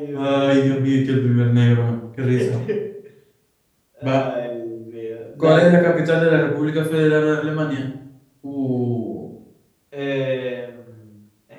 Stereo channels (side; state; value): both; identical; correlation 1.00